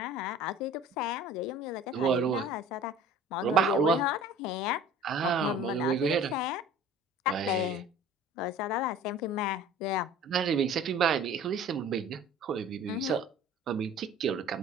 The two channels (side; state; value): both; normal; correlation 0.45